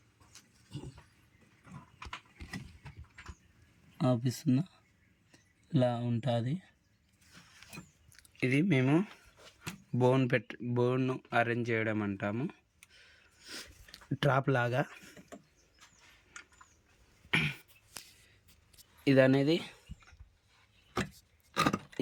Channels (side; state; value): both; identical; correlation 1.00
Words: ఆపిస్తున్నా, ఇలా ఉంటుంది. ఇది మేము బోన్ అరేంజ్ చేయడం అంటాము, ట్రాప్ లాగా. ఇది అనేది,